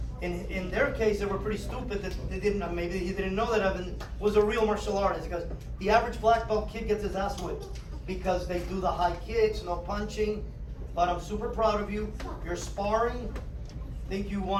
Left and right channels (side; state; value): both; identical; correlation 1.00